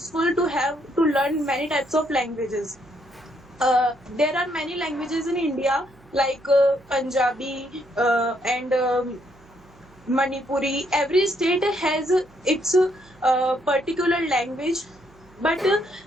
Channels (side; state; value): right; noise; hum, 27 dB below the sound